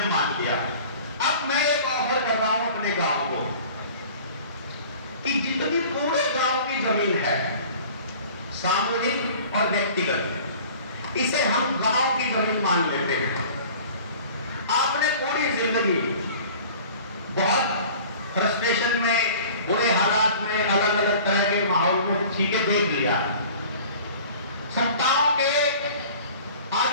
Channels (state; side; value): inverted; both; correlation -0.45